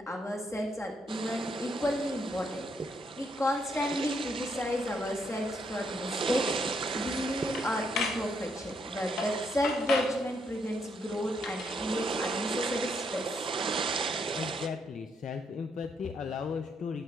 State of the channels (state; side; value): normal; both; correlation 0.75